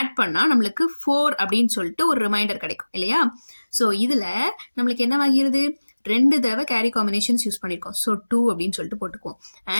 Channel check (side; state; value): both; inverted; correlation -1.00